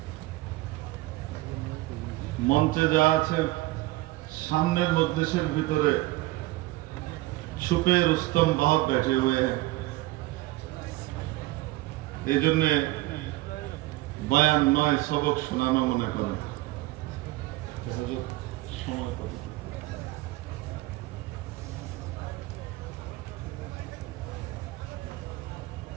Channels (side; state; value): left; quieter; 19.1 dB